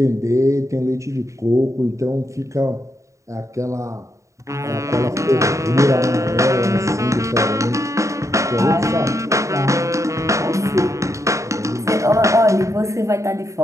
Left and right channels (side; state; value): left; late; 0.15 ms